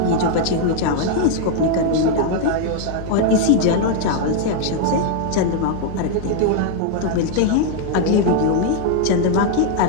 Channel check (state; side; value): different; both; correlation 0.00